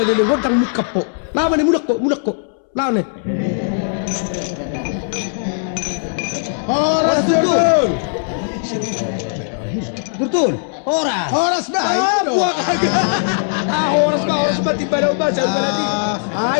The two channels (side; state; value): right; silent; 67 dB below the other